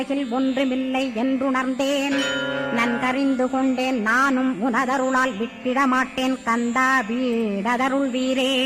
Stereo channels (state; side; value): identical; both; correlation 1.00